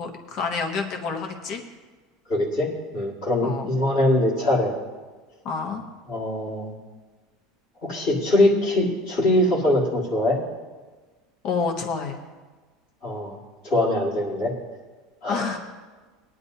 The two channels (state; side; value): normal; both; correlation 0.55